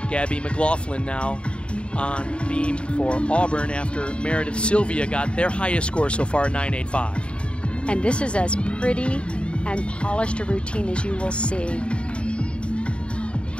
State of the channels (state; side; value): late; right; 0.057 ms